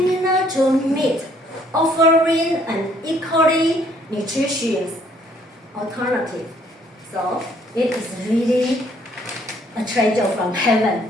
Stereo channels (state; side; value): normal; both; correlation 0.64